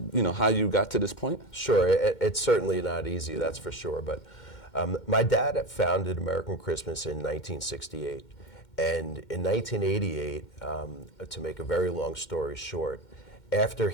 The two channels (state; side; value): late; right; 2.1 ms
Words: how you got to this point? Sure, it's certainly not easy, that's for sure. But my dad had founded American Christmas in 1968. And in 1988, to make a very long story short, after